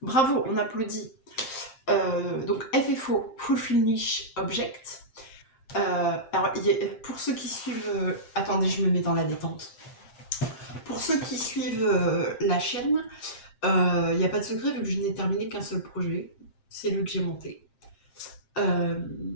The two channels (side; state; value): right; late; 7.6 ms